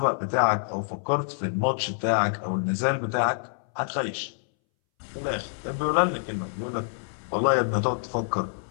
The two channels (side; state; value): right; silent; 60 dB below the other